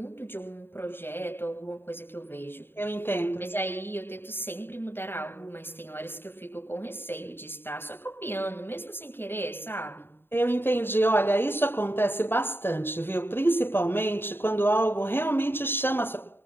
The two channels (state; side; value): late; right; 0.10 ms